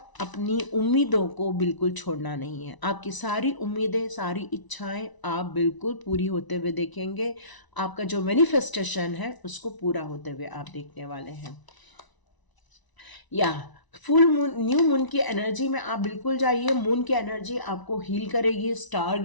अपनी उम्मीदों को बिल्कुल छोड़ना नहीं है। आपकी सारी उम्मीदें, सारी इच्छाएं आप बिल्कुल पूरी होते हुए देखेंगे। आपका जो मैनिफेस्टेशन है उसको पूरा होते हुए आप देखने वाले हैं। या फुल मून, न्यू मून की एनर्जी में आप बिल्कुल जाइए। मून की एनर्जी आपको हील करेगी। स्टार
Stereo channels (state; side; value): late; right; 1.0 ms